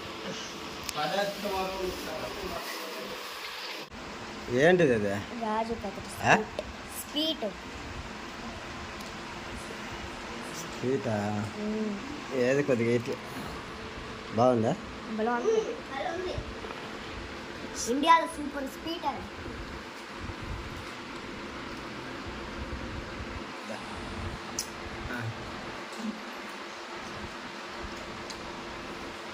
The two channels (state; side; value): identical; both; correlation 1.00